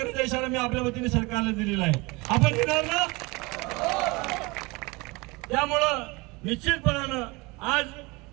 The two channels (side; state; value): left; quieter; 25.1 dB